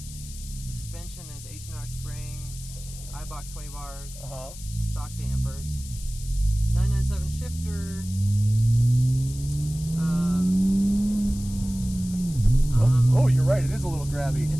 Suspension is H&R springs, iBox sway bars, stock dampers, 997 shifter. Oh, you're right. It is a little grabby.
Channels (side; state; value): left; noise; hiss, 15 dB below the sound